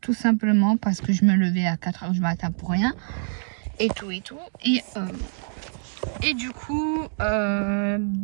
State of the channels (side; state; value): left; silent; digital silence